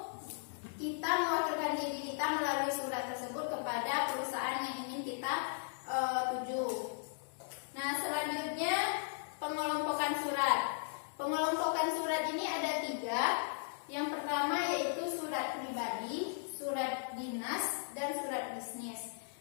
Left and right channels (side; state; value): right; silent; digital silence